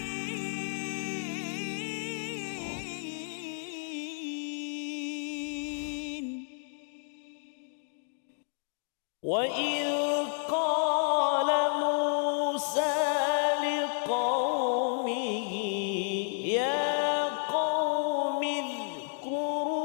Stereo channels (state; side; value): silent; right; 57 dB below the other